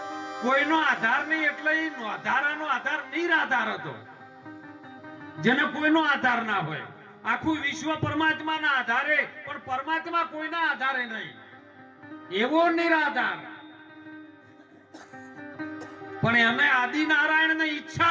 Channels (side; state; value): both; identical; correlation 1.00